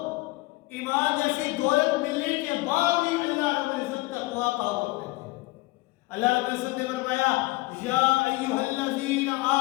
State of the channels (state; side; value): quieter; right; 21.8 dB